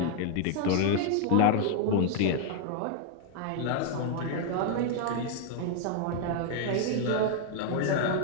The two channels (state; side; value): different; both; correlation 0.00